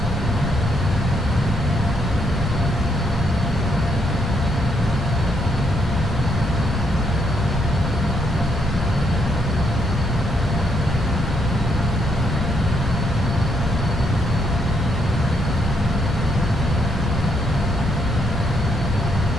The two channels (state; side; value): normal; both; correlation 0.75